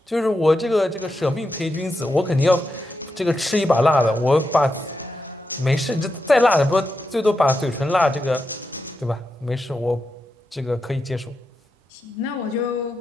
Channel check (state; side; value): normal; both; correlation 0.87